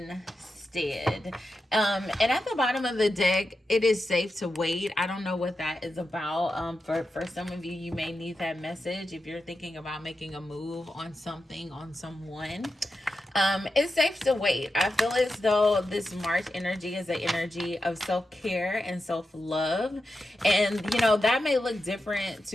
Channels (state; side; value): normal; both; correlation 0.89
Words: And at the bottom of the deck, it is safe to wait. I don't know what that is about. For some of you, you may need that message if you're thinking about making a move on something, on someone. It's safe to wait. I feel as though this March energy is an energy of self-care and self-love. And, you know, that may look different